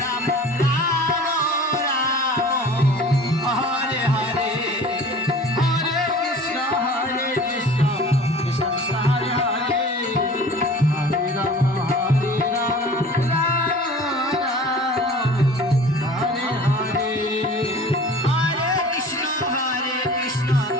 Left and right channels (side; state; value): both; normal; correlation 0.43